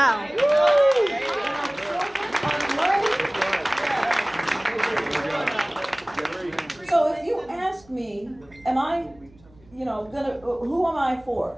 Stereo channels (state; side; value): noise; right; hum, 27 dB below the sound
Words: So if you ask me, am I, who am I for?